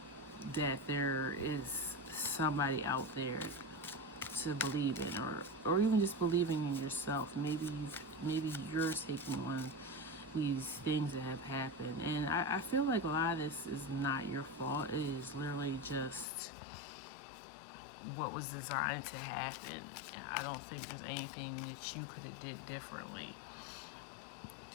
that there is somebody out there to believe in, or even just believing in yourself. Maybe you're taking on these things that have happened, and I feel like a lot of this is not your fault. It is literally just what was designed to happen. I don't think there's anything that you could have did differently.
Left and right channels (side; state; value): right; drops out; at 16.2 s